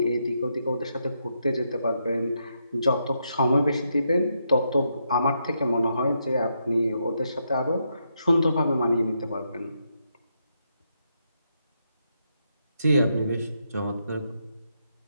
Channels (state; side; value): inverted; both; correlation -0.80